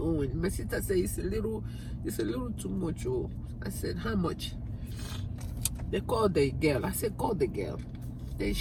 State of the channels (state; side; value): identical; both; correlation 1.00